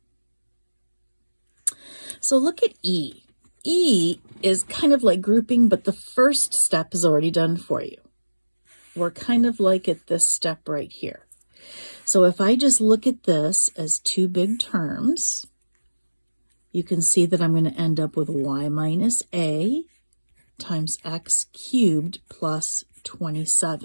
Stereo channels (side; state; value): both; inverted; correlation -1.00